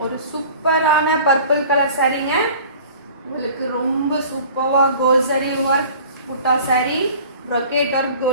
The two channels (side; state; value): both; inverted; correlation -0.45